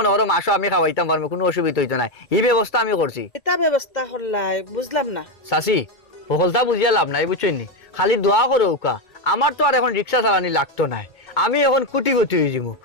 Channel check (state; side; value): late; right; 1.9 ms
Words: করো মাসও আমি খাওয়াইতাম পারবো কোনো অসুবিধা হইতো না এই ব্যবস্থা আমি করছি এটা ব্যবস্থা করলাই বুঝলাম না চাচি সকলটা বুঝিয়া লাভ নাই বুঝছো নি খালি দোয়া করো উকা আমার তো আর এখন রিক্সা চালানি লাগতো না আমি এখন কুটিপতি হয়ে যাবো